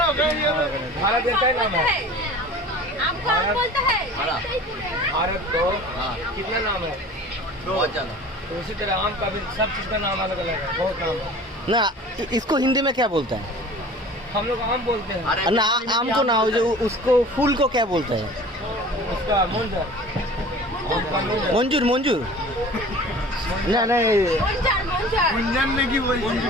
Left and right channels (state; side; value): normal; both; correlation 0.42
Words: भारत देश का नाम है आपको आम बोलता है हरा। भारत को हां कितना नाम है? बहुत ज्यादा तो उसी तरह आम का भी सब चीज का नाम अलग अलग है, बहुत नाम है। না इसको हिंदी में क्या बोलता है? हम लोग आम बोलते हैं, अरे ना आम को ना, जो उसको फूल को क्या बोलते हैं? उसका मुंजर, आम का मुंजर। मंजूर मंजूर ना नहीं मंजार मंजार गुंजन ने की बोल